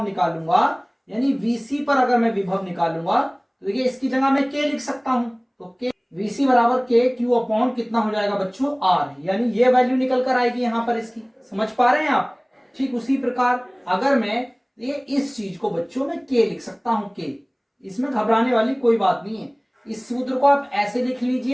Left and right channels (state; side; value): identical; both; correlation 1.00